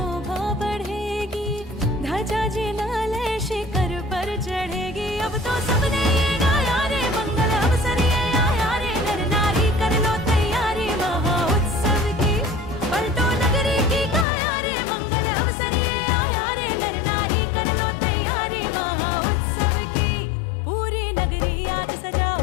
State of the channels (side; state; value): right; drops out; at 14.2 s